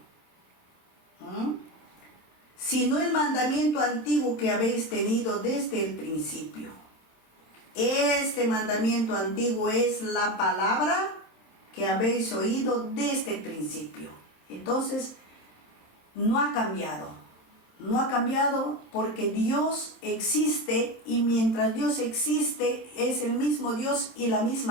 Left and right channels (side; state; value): right; late; 27 ms